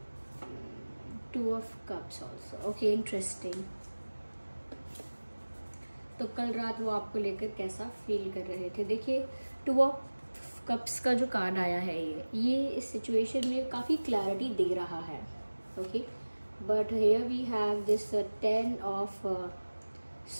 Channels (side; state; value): both; inverted; correlation -1.00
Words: 2 of cups also. Okay, interesting. तो कल रात वो आपको लेकर कैसा फील कर रहे थे। देखिए, 2 ऑफ कप्स का जो कार्ड आया है ये इस सिचुएशन में काफ़ी क्लैरिटी दे रहा है। Okay, but here we have this 10 of